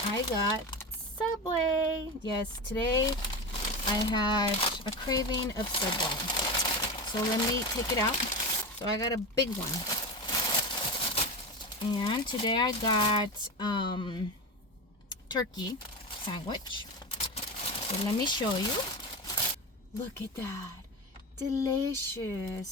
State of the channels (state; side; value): normal; both; correlation 0.22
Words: I got Subway. Yes, today I had a craving of Subway, so let me take it out. So I got a big one, and today I got turkey sandwich. So let me show you. Look at that. Delicious.